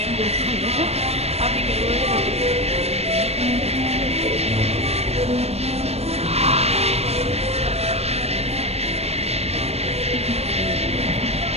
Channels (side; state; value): left; late; 0.30 ms